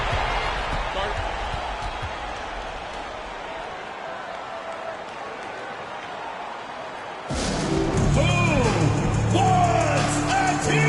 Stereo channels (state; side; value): identical; both; correlation 1.00